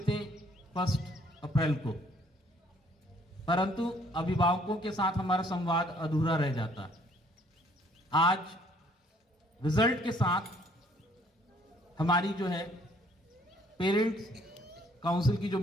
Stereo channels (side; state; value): both; normal; correlation 0.62